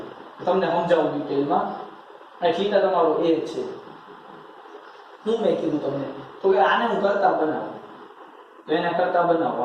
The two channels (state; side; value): identical; both; correlation 1.00